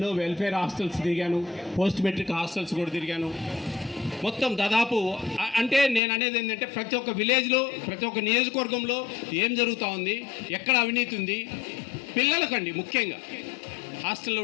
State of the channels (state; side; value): drops out; right; at 6.0 s